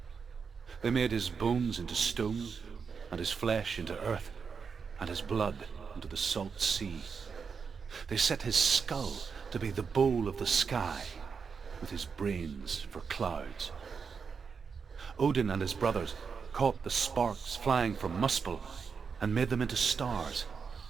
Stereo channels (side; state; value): left; quieter; 5.8 dB